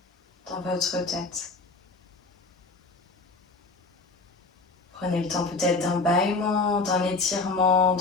dans votre tête. Prenez le temps peut-être d'un bâillement, d'un étirement,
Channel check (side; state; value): right; quieter; 3.6 dB